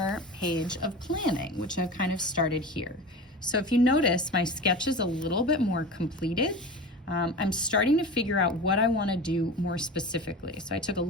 page of planning, which I've kind of started here. So if you notice, my sketch is a little bit more completed. I'm starting to figure out what I want to do more specifically. So I took a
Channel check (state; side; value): normal; both; correlation 0.31